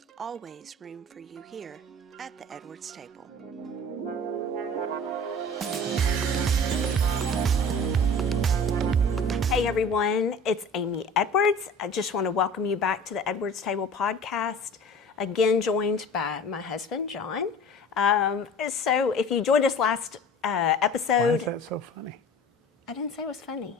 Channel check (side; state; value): both; normal; correlation 0.41